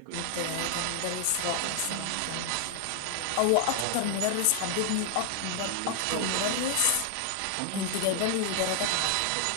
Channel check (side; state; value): both; different; correlation 0.00